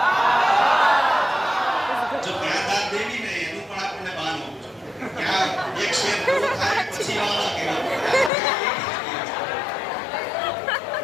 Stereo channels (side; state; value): right; drops out; at 8.3 s